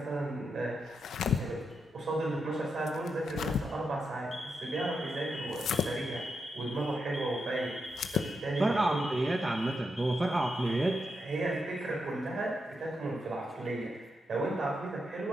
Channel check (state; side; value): normal; both; correlation 0.84